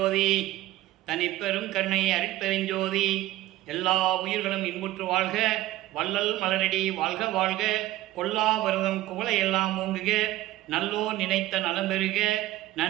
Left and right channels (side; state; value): left; quieter; 16.1 dB